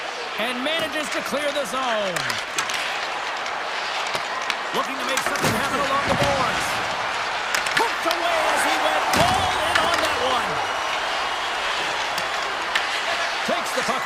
And manages to clear the zone. Looking to make something happen along the boards. Hooked away as he went all in on that one. Takes the puck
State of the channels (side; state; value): both; identical; correlation 1.00